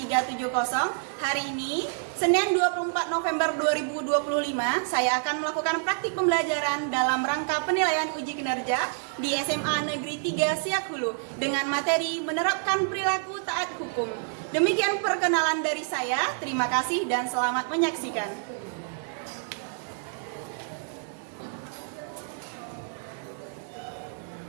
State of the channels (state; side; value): silent; left; digital silence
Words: Hari ini, Senin 24 November 2025, saya akan melakukan praktik pembelajaran dalam rangka penilaian uji kinerja di SMA Negeri 3 Siak Hulu dengan materi menerapkan perilaku taat hukum. Demikian perkenalan dari saya. Terima kasih dan selamat menyaksikan.